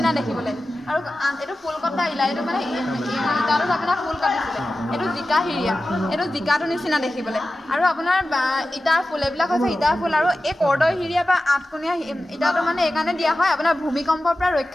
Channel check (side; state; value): both; normal; correlation 0.94